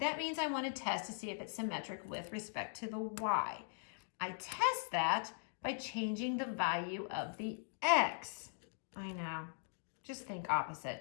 means I want to test to see if it's symmetric with respect to the y. I test that by changing the value of the x. I know, just think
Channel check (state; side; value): silent; right; digital silence